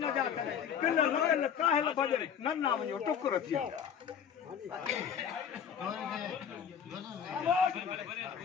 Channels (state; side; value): quieter; right; 7.9 dB